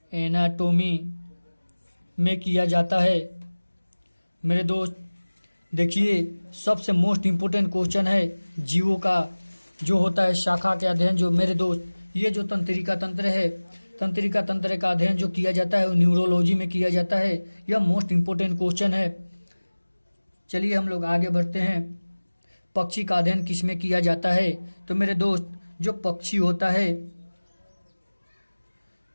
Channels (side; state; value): both; inverted; correlation -1.00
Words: एनाटॉमी में किया जाता है मेरे दोस्त। देखिए, सबसे मोस्ट इम्पोर्टेंट क्वेश्चन है जीवों का जो होता है शाखा के अध्ययन। जो मेरे दोस्त ये जो तंत्रिका तंत्र है, तंत्रिका तंत्र का अध्ययन जो किया जाता है वो न्यूरोलॉजी में किया जाता है। यह मोस्ट इम्पोर्टेंट क्वेश्चन है। चलिए हम लोग आगे बढ़ते हैं। पक्षी का अध्ययन किसमें किया जाता है। तो मेरे दोस्त, जो पक्षी होता है,